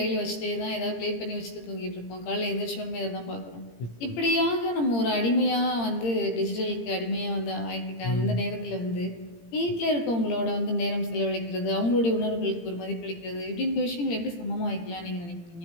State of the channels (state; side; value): late; right; 17 ms